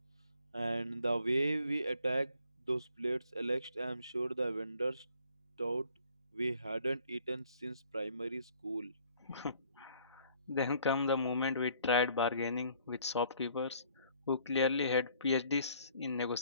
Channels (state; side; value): inverted; both; correlation -0.60